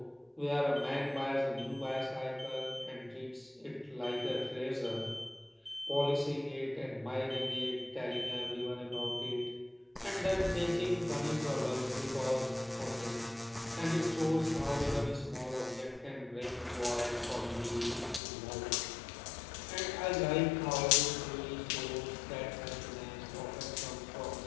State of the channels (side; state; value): right; drops out; at 18.2 s